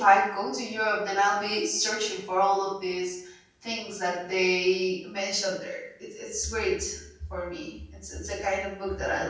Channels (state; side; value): identical; both; correlation 1.00